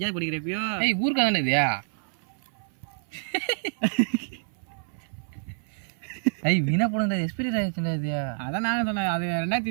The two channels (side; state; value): left; silent; 56 dB below the other